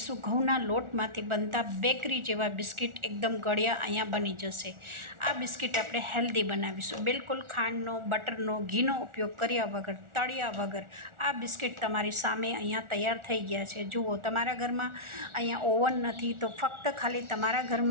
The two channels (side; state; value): left; late; 1.4 ms